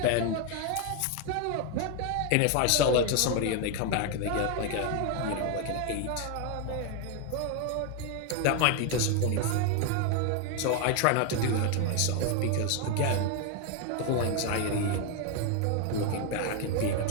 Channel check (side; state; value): both; different; correlation 0.01